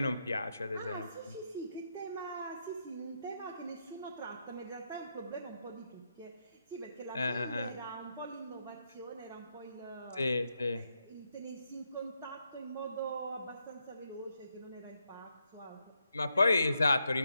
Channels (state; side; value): inverted; both; correlation -0.81